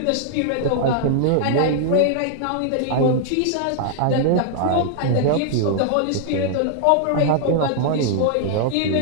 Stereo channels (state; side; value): different; both; correlation -0.01